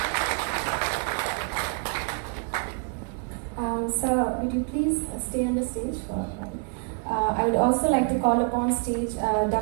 Sir, would you please stay on the stage? I would also like to call upon stage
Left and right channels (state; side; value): quieter; left; 38.4 dB